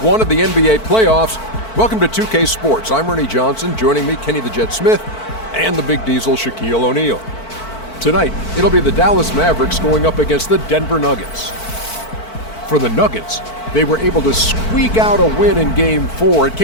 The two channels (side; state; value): right; late; 4.5 ms